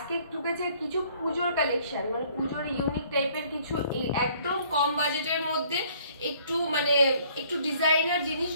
ঢুকেছে কিছু পুজোর কালেকশন, পুজোর ইউনিক টাইপের কিছু একদম কম বাজেটের মধ্যে একটু ডিজাইনার জিনিস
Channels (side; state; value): both; inverted; correlation -0.60